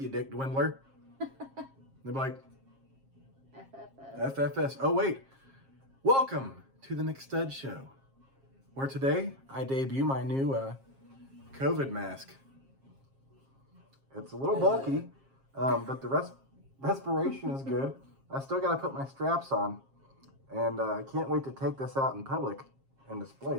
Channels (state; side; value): late; left; 7.4 ms